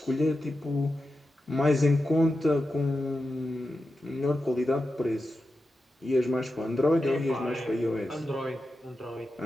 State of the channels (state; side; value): normal; both; correlation 0.90